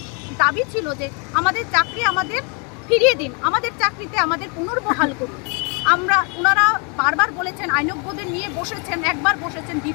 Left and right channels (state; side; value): quieter; right; 34.9 dB